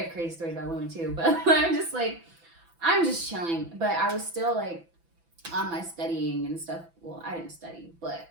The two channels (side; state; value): left; late; 6.0 ms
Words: crazy stories about women too. But I'm just like, I'm just chilling. But I was still like on my studying and stuff. Well, I didn't study, but